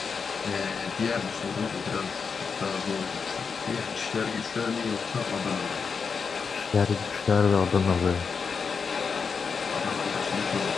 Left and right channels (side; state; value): right; quieter; 5.6 dB